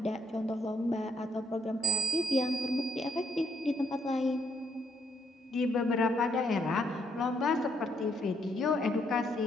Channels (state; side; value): normal; both; correlation 0.71